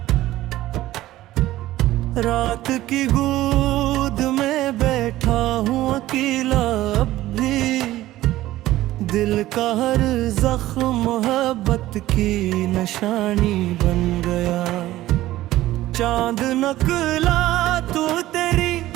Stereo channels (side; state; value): left; quieter; 15.6 dB